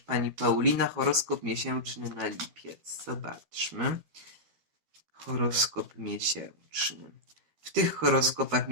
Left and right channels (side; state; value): left; late; 13 ms